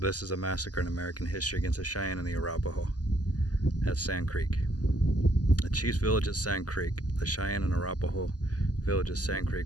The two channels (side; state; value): right; late; 0.68 ms